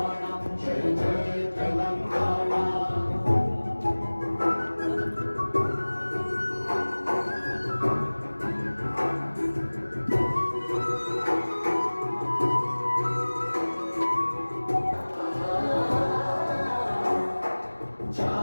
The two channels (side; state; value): both; inverted; correlation -1.00